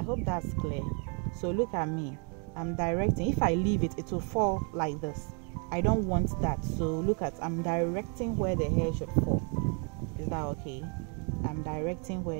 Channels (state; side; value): quieter; left; 37.6 dB